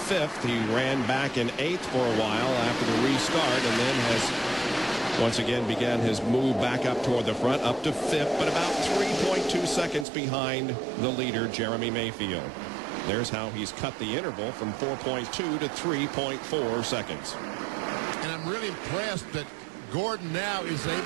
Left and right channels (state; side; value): drops out; left; at 10.1 s